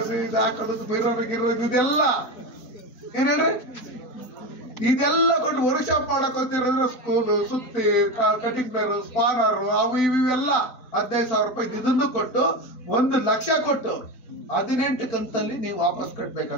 ಇದು ಹಾಕೋದು, ಬಿರೋರು ಗಿರೋದು ಇದೆಲ್ಲ ಏನೇನ್ರಿ ಇದೆಲ್ಲ ಕೊಟ್ಟು ವರ್ಕ್ ಶಾಪ್ ಮಾಡಕ್ ಹೋಗ್ತಿರಂದ್ರೆ ಸ್ಕೂಲು, ಸುತ್ತಿ, ಕಟಿಂಗ್ ಪ್ಲೇರು, ಸ್ಪಾನರು, ಅವು ಇವೆಲ್ಲ 15,000 ರೂಪಾಯಿ ಇದನ್ನು ಕೊಟ್ಟು 1 ಲಕ್ಷ ಕೊಟ್ಟು 18 ಕಂತಲ್ಲಿ ನೀವು ವಾಪಸ್ ಕಟ್ಬೇಕು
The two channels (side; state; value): right; late; 3.9 ms